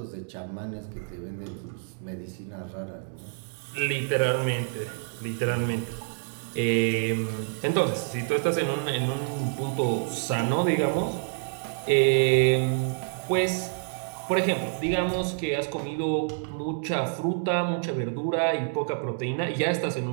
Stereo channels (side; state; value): left; silent; 60 dB below the other